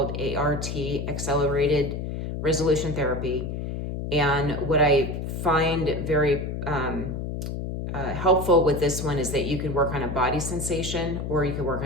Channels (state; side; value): noise; left; hum, 4 dB below the sound